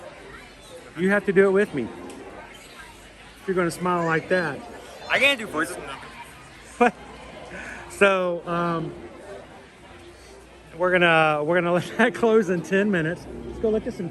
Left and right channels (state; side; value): identical; both; correlation 1.00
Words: You have to do it with me. If you're going to smile like that. I can't do voices. So, we're gonna let that close in 10 minutes. Let's go look at some